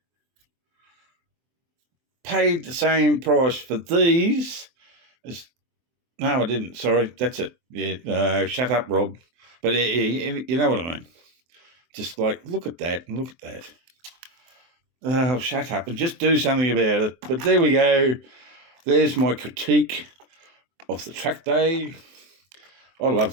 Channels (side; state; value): left; late; 23 ms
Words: Paid the same price for these as... no, I didn't. Sorry, that's it. Yeah, shut up, Rob. But you know what I mean. Just like, look at that and look at that. Oh, shut up and just do something about it. But there we go. There's my critique of the track day. I